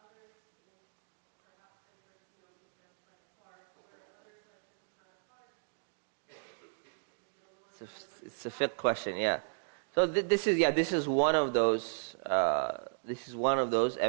It's a fiqh question, yeah. So this is one of those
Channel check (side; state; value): left; silent; digital silence